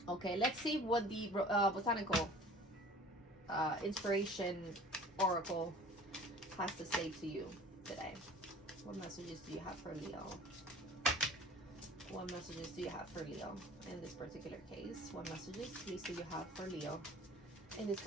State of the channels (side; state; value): both; normal; correlation 0.46